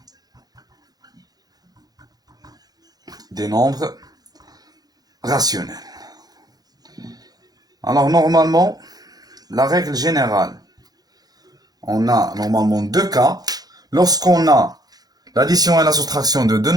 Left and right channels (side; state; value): left; late; 0.19 ms